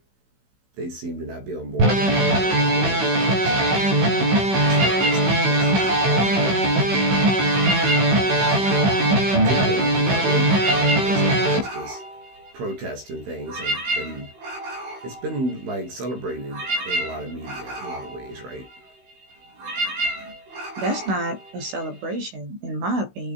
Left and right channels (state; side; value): late; left; 16 ms